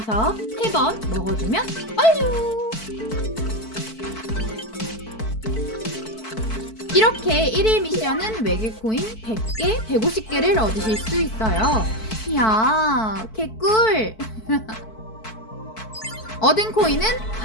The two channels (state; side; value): late; right; 4.5 ms